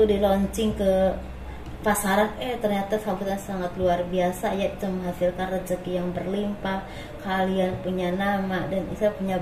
di launching ke pasaran, ternyata sambutan sangat luar biasa, yaitu menghasilkan rezeki yang berlimpah. Kalian punya nama dan bisa punya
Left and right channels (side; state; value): both; identical; correlation 1.00